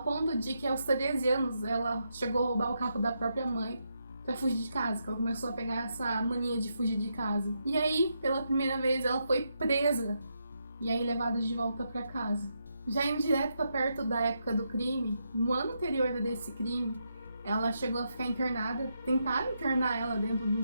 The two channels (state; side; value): inverted; both; correlation -0.82